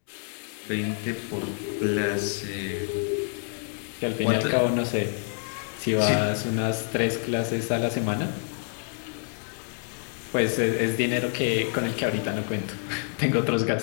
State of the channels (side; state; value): right; silent; 60 dB below the other